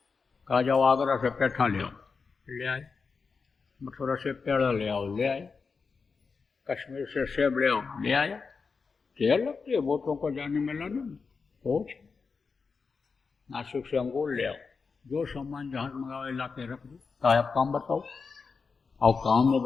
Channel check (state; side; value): quieter; right; 5.0 dB